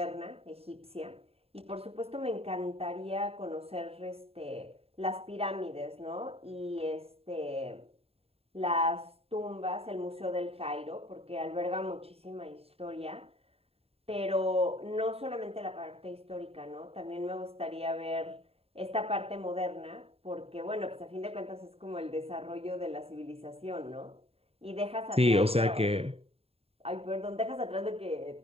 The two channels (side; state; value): left; late; 0.29 ms